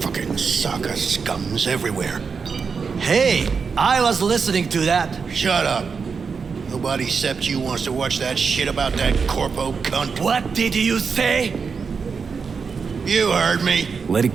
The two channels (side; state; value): left; quieter; 5.5 dB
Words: Saka scums everywhere. Hey, I was listening to that. Shut up. Nobody except you wants to watch that shit about that corpo cunt. What did you say? You heard me. Let